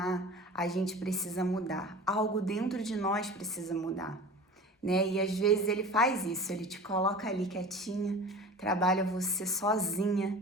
a gente precisa mudar, algo dentro de nós precisa mudar, E às vezes Ele faz isso, Ele te coloca ali quietinha, trabalha você sozinha,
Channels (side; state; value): both; normal; correlation 0.36